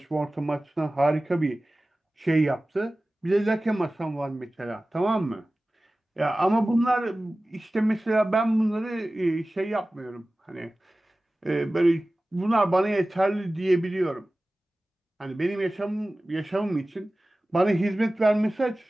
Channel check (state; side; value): normal; both; correlation 0.97